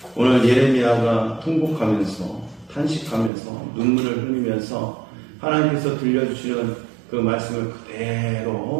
오늘 예레미야가 통곡하면서 탄식하면서 눈물을 흘리면서 하나님께서 들려주시는 그 말씀을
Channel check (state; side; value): drops out; left; at 3.3 s